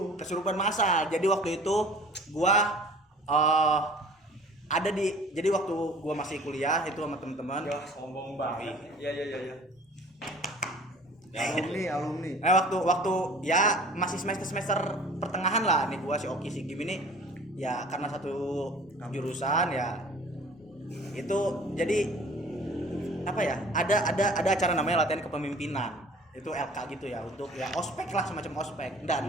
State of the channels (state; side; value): normal; both; correlation 0.48